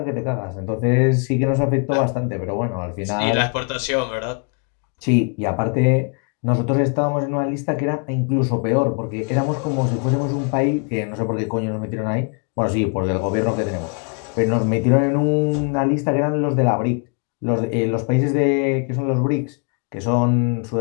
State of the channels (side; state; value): right; quieter; 38.2 dB